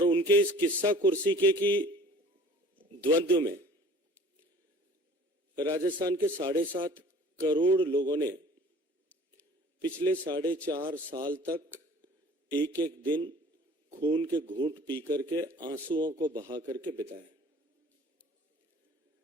उनके इस किस्सा कुर्सी के की द्वंद्व में राजस्थान के 7.5 करोड़ लोगों ने पिछले 4.5 साल तक एक एक दिन खून के घूंट पी करके, आंसुओं को बहा करके बिताया।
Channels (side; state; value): both; normal; correlation 0.48